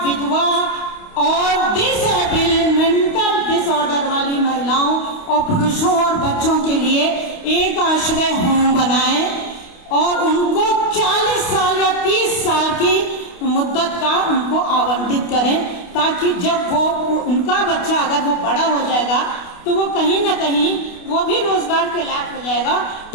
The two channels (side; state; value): right; late; 28 ms